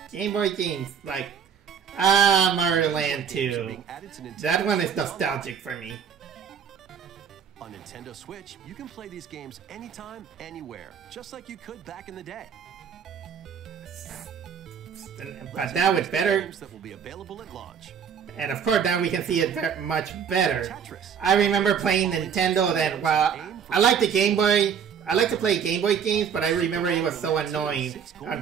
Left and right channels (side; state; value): left; quieter; 7.5 dB